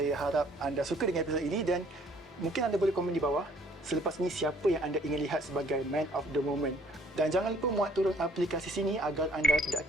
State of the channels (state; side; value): normal; both; correlation 0.60